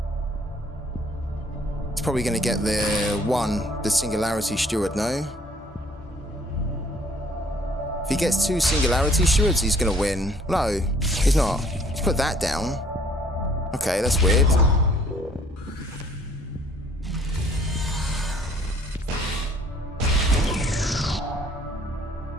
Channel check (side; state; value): both; normal; correlation 0.59